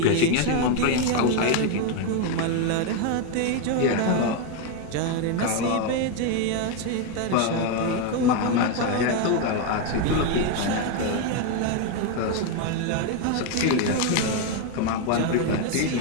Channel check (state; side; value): different; both; correlation 0.01